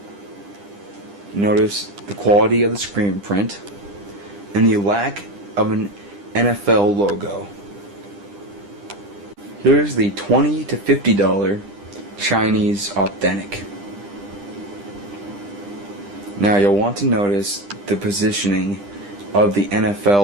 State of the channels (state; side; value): late; left; 10 ms